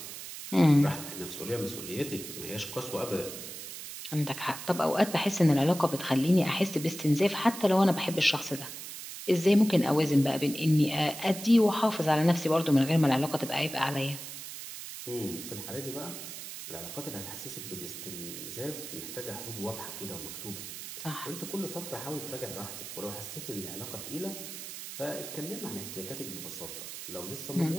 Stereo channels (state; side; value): noise; right; hiss, 10 dB below the sound